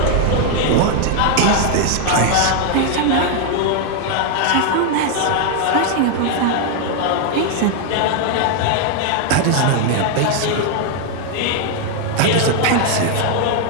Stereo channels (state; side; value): different; both; correlation 0.00